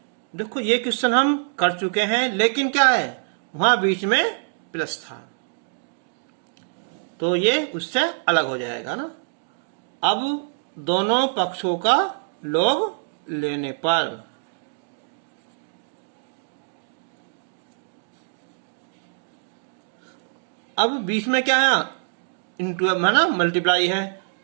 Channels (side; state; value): left; silent; digital silence